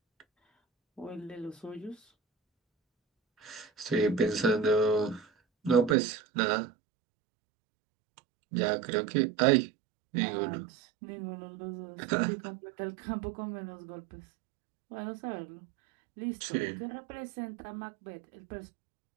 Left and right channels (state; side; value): drops out; left; at 6.0 s